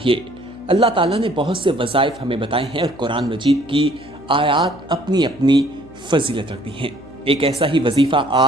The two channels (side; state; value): left; noise; hum, 21 dB below the sound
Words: अल्लाह ताला ने बहुत से वज़ाइफ हमें बताए हैं और कुरान मजीद की आयात अपनी अपनी फजीलत रखती हैं। एक ऐसा ही वजीफ़ा